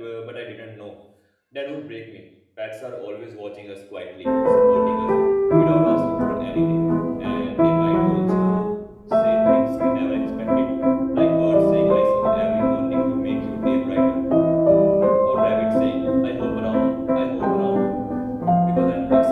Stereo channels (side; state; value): both; identical; correlation 1.00